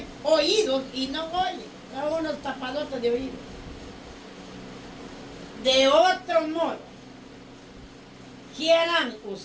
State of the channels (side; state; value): both; identical; correlation 1.00